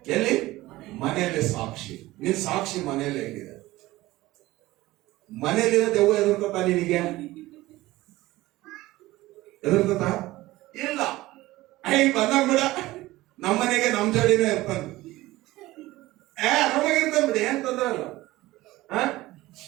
ಎಲ್ಲಿ? ಮನೆಯಲ್ಲಿ ಸಾಕ್ಷಿ. ನಿನ್ ಸಾಕ್ಷಿ ಮನೆಯಲ್ಲೇ ಹೇಗಿದೆ? ಮನೆಯಲ್ಲಿರೋ ದೆವ್ವ ಎದುರ್ಕೊತಾ ನಿನಗೆ? ಎದುರ್ಕೊತಾ ಇಲ್ಲ. ಬಂದಾಗ ಬಿಡ, ನಮ್ಮನೆಗೆ ನಮ್ ಜೋಡಿನೇ ಇರ್ತಾನೆ. ಆರಾಮಾಗಿರ್ತಾನೆ ಬಿಡಿ, ಏನ್ ತೊಂದ್ರೆ ಇಲ್ಲ.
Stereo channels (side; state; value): left; quieter; 18.0 dB